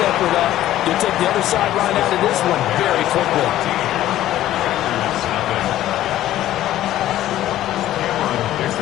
effort up, you'll take the other sideline out of this one very quickly.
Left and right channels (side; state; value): right; quieter; 13.6 dB